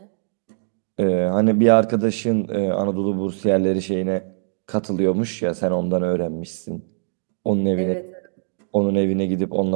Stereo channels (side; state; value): left; silent; 62 dB below the other